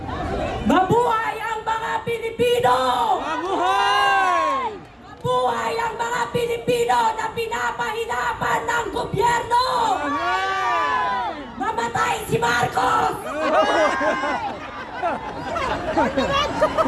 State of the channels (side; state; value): both; identical; correlation 1.00